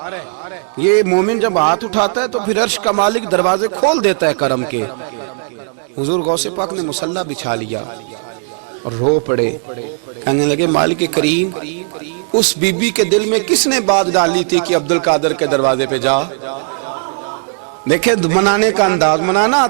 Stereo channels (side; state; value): left; silent; digital silence